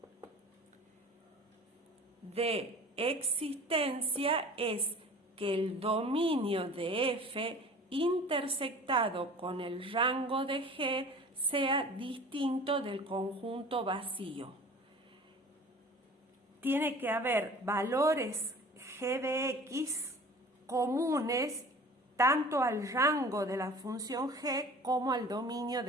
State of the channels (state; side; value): normal; both; correlation 0.43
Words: es que el dominio de f intersectado con el rango de g sea distinto del conjunto vacío. Tiene que haber valores g de x comunes tanto al rango de la función g como al dominio